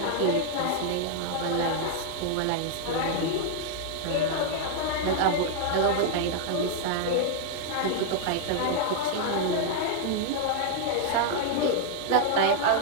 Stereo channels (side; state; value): both; different; correlation 0.00